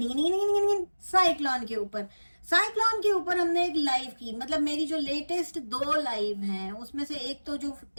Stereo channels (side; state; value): both; inverted; correlation -1.00